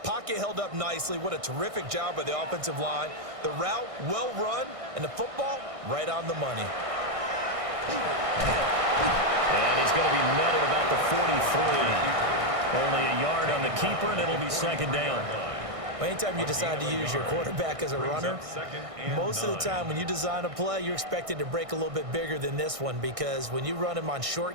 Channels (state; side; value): late; left; 1.6 ms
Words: pocket held up nicely. What a terrific job by the offensive line. The route, well run, and the football, right on the money. And he's going to be met at about the 43. Only a yard on the keeper, and it'll be 2nd down. Well, anytime you decide to use your quarterback as a runner, most of the time when you design a play, you're expected to break a little bit bigger than this one, because when you run him on